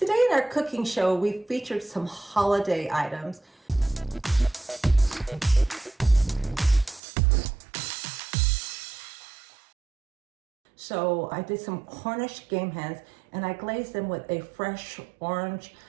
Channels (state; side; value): drops out; left; at 7.0 s